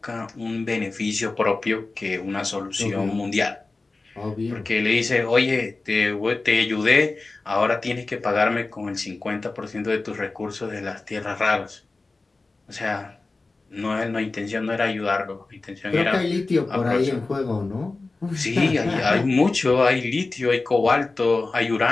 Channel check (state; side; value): quieter; right; 3.5 dB